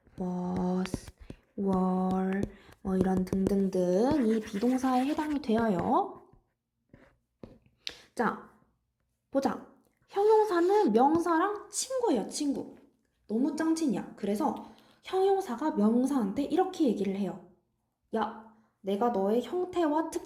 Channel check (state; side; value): identical; both; correlation 1.00